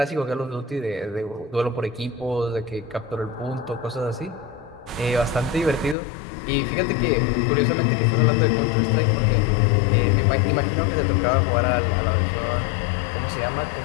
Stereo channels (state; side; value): drops out; right; at 6.0 s